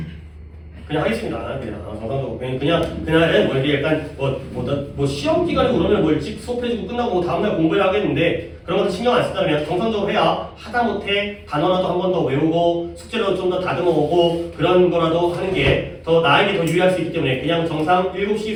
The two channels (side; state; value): both; identical; correlation 1.00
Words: 그냥 하겠습니다. 그냥 정상적으로 그날은 뭐 이렇게 약간 뭐 시험 기간이고 그러면 뭐 일찍 수업해주고 끝나고 뭐 다음날 공부를 하겠는데 그런 것도 신경 안 쓰다 그냥 정상적으로 해야 하다못해 단어라도 한 번 더 외우고 숙제로 좀 더 다듬어오고 그런 거라도 하는 게 더 나에게 더 유리할 수 있기 때문에 그냥 정상